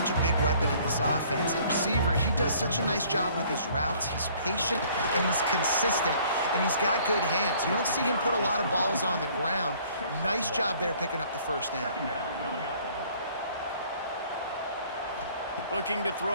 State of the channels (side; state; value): both; inverted; correlation -0.57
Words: a big weapon in this offense. At receiver, he does such a nice job with his routes. He's patient, and he's consistent, and he's got good hands. You don't see him put a lot of balls on the ground. Nice job there picking up the first down. Looking to